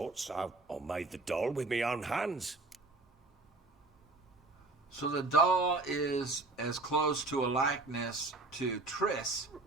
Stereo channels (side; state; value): left; quieter; 3.2 dB